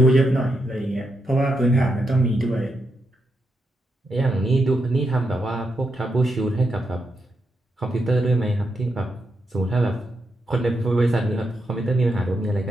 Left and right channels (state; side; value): normal; both; correlation 0.83